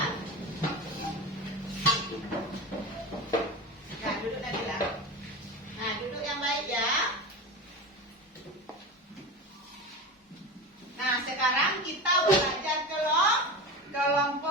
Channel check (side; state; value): both; normal; correlation 0.26